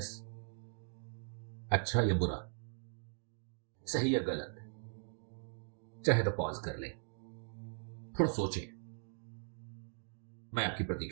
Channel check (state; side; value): silent; left; digital silence